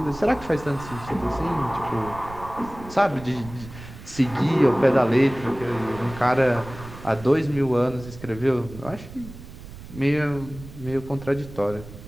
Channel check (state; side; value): noise; right; rumble, 15 dB below the sound